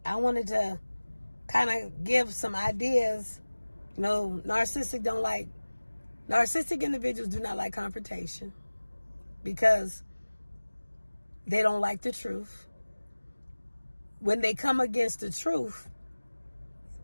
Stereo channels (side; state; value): both; inverted; correlation -1.00